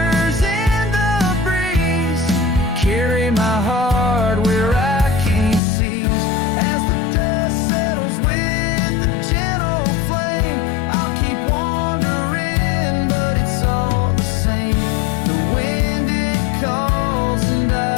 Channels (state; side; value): drops out; right; at 5.6 s